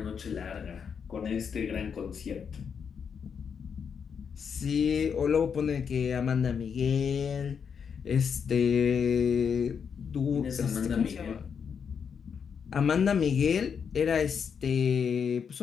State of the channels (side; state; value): right; quieter; 6.8 dB